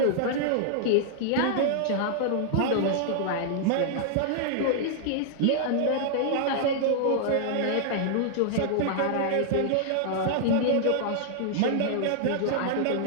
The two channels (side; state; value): both; different; correlation -0.01